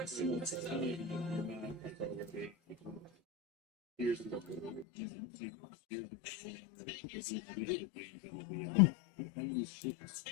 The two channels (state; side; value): drops out; right; at 4.9 s